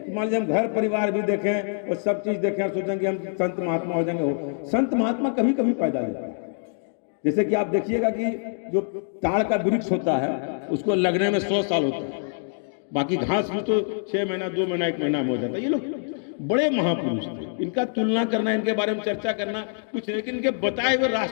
मान लीजिए हम घर परिवार भी देखें और सब चीज देखें, सोचेंगे हम संत महात्मा हो जाएंगे। हो संत महात्मा कभी कभी पैदा होता है। जैसे कि आप देखिएगा कि जो ताड़ का वृक्ष होता है उसको लगने में 100 साल होता है, बाकी घास भी तो 6 महीना 2 महीना 1 महीना में हो जाता है। ये लोग बड़े महापुरुष थे, इनका तुलना करना, इनके बारे में चर्चा करना कुछ, लेकिन इनके बताए हुए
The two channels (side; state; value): right; silent; digital silence